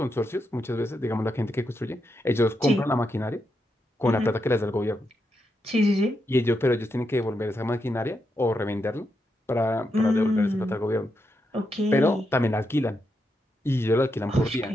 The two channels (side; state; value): both; normal; correlation 0.84